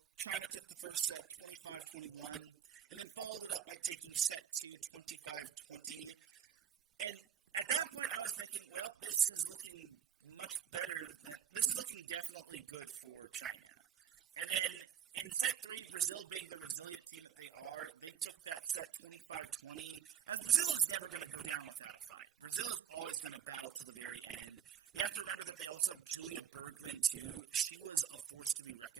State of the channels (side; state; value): left; quieter; 8.8 dB